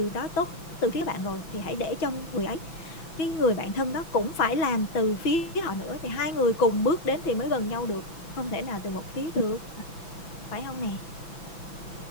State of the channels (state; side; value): late; right; 6.0 ms